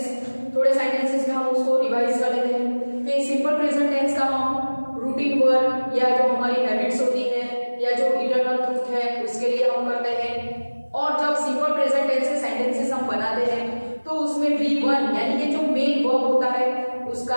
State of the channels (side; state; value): both; inverted; correlation -1.00